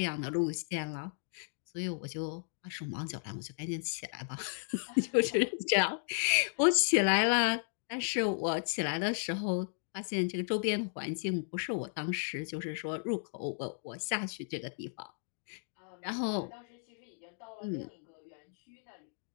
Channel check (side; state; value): right; silent; digital silence